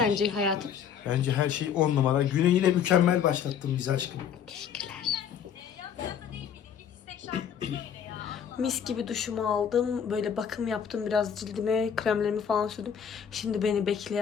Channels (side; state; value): right; quieter; 8.1 dB